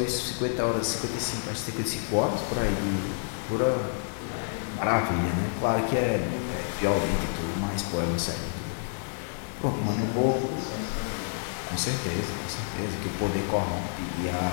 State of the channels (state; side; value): silent; right; digital silence